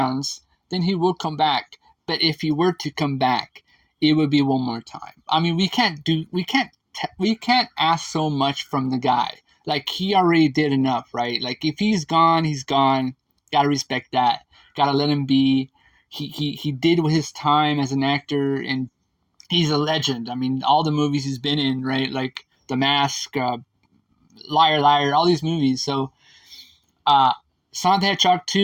then he will come back. But if he were to come back, it would be one more time. I mean, we can't ask so much from the guy. Like, he already did enough, right? Like, if he's gone, he's gone. Gotta respect that. Gotta let him be. He did with his time as an actor, and he's a legend. I mean, all the movies he's been in, right? Like The Mask, Liar Liar, all these movies. So Sonic the Hedgehog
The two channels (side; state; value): both; identical; correlation 1.00